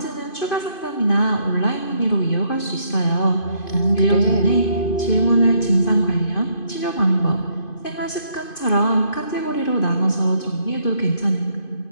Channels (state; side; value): late; right; 2.5 ms